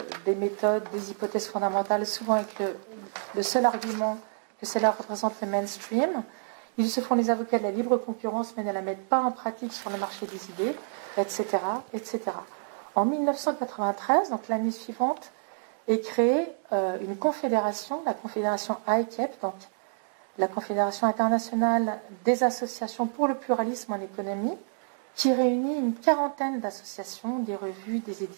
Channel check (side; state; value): left; silent; digital silence